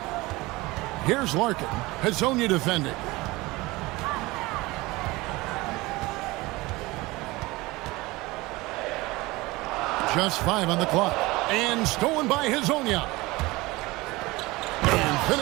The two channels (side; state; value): left; quieter; 21.4 dB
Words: Here's Larkin. Hazonia defending. Just 5 on the clock. And stolen by Hazonia. And